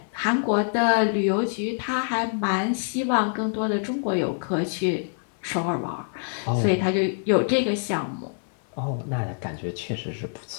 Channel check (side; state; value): right; silent; 59 dB below the other